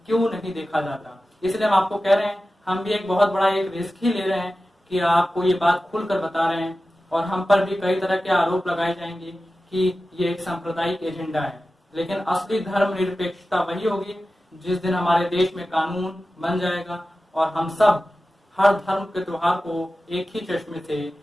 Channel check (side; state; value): both; normal; correlation 0.94